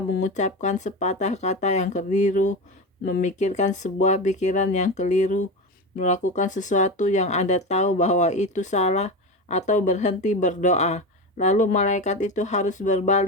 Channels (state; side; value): normal; both; correlation 0.21